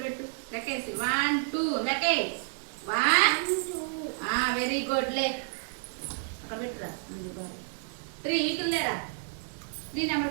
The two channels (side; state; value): left; silent; digital silence